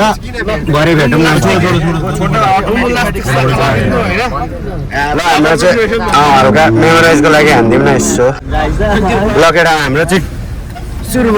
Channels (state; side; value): identical; both; correlation 1.00